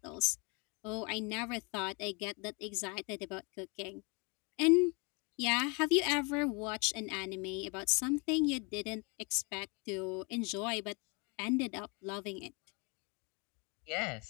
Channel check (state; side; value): quieter; right; 31.5 dB